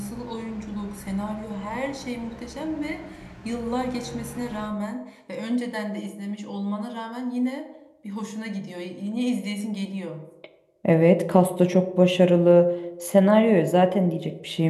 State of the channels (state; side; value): identical; both; correlation 1.00